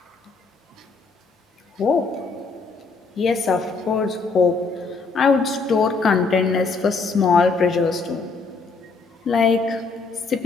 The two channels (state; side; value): quieter; right; 4.2 dB